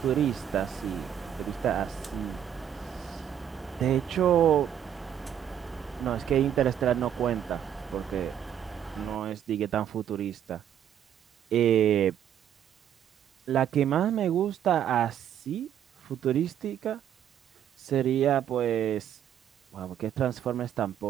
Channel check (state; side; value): quieter; left; 9.7 dB